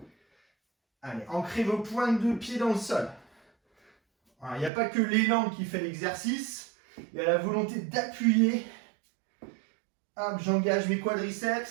Allez, ancrez vos pointes de pied dans le sol. Il n'y a pas que l'élan qui fait l'exercice. Il y a la volonté d'appuyer. Hop, j'engage mes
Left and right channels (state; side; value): drops out; left; at 4.7 s